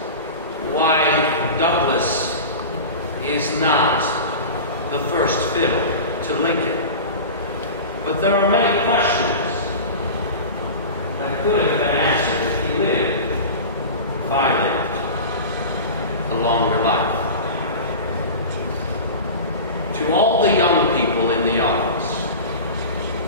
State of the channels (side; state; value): both; inverted; correlation -0.31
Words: why Douglas is not the first fiddle to Lincoln, but there are many questions that could have been answered if he lived, if I lived, a longer life. To all the young people in the audience,